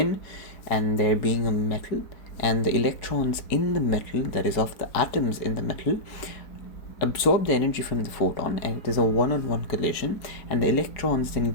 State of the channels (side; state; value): right; late; 4.7 ms